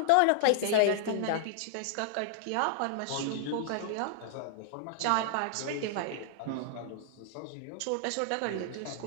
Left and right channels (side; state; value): both; different; correlation -0.01